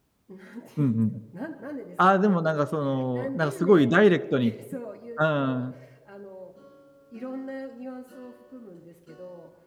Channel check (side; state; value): both; identical; correlation 1.00